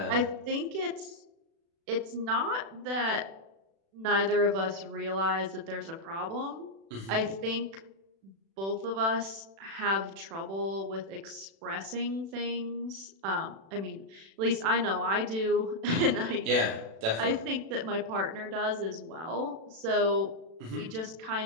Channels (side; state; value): left; late; 36 ms